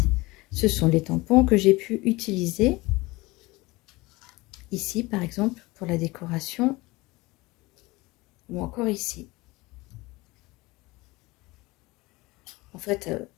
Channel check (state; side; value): quieter; right; 21.9 dB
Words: Ce sont les tampons que j'ai pu utiliser ici, par exemple, pour la décoration, ou encore ici. En fait,